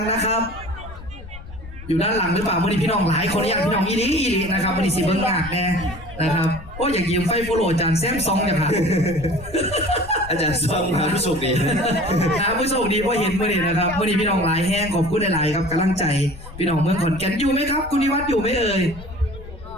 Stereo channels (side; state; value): left; noise; rumble, 15 dB below the sound